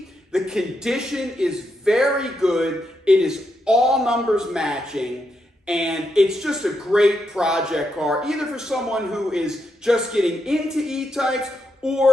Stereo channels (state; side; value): normal; both; correlation 0.82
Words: The condition is very good. It is all numbers matching. And it's just a great project car, either for someone who is just getting into E-Types